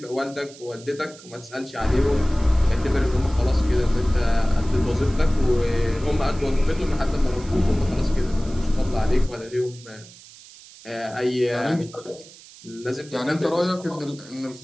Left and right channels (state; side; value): noise; right; hiss, 20 dB below the sound